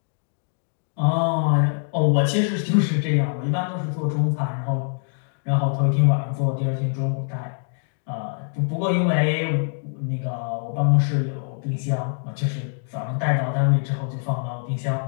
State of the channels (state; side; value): silent; right; digital silence